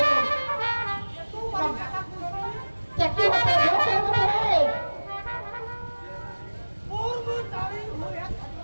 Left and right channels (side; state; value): both; inverted; correlation -1.00